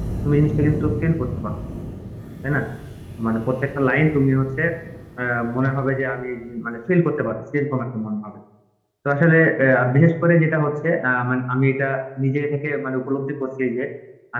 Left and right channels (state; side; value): identical; both; correlation 1.00